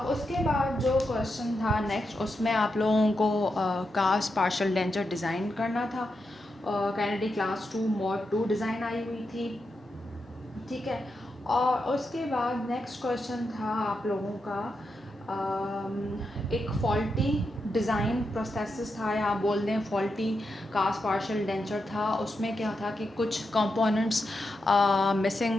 उसके बाद जो क्वेश्चन था नेक्स्ट, उसमें आप लोगों को कास्ट पार्शल डेंचर डिज़ाइन करना था। कैनेडी क्लास 2 मॉड 2 डिज़ाइन आई हुई थी। ठीक है, और उसके बाद नेक्स्ट क्वेश्चन था आप लोगों का एक फॉल्टी डिज़ाइन प्रोसेस था, या आप बोल दें फॉल्टी कास्ट पार्शल डेंचर था। उसमें क्या था कि कुछ कंपोनेंट्स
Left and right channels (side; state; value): both; normal; correlation 0.86